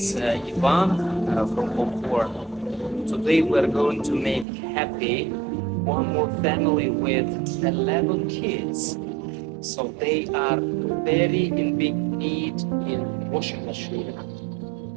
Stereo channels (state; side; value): drops out; left; at 4.5 s